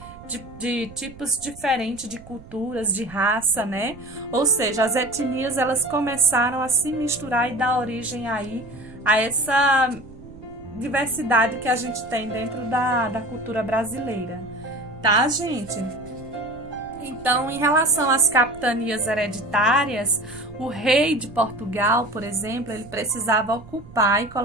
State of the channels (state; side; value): noise; right; rumble, 19 dB below the sound